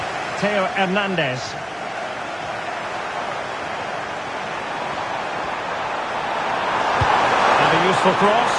Theo Hernandez. And a useful cross.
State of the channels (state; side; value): identical; both; correlation 1.00